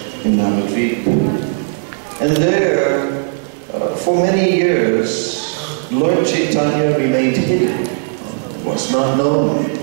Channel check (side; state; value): left; silent; digital silence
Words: in Navadvip. And there, for many years, Lord Chaitanya remained hidden. It was not known